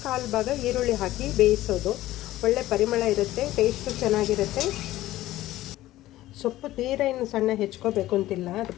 1/4 ಭಾಗ ಈರುಳ್ಳಿ ಹಾಕಿ ಬೇಯಿಸೋದು. ಒಳ್ಳೆ ಪರಿಮಳ ಇರುತ್ತೆ, ಟೇಸ್ಟು ಚೆನ್ನಾಗಿರುತ್ತೆ. ಸೊಪ್ಪು ತೀರಾ ಇನ್ನು ಸಣ್ಣ ಹೆಚ್ಕೋಬೇಕು ಅಂತಿಲ್ಲ, ಅದು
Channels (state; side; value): quieter; right; 15.6 dB